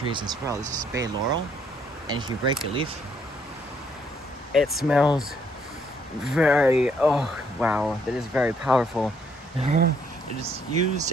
as well. This is bay laurel, and if you break a leaf, it smells very, oh wow, that is very powerful. It is used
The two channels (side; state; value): both; normal; correlation 0.69